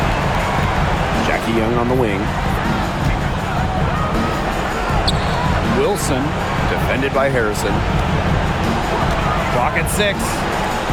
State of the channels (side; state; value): both; identical; correlation 1.00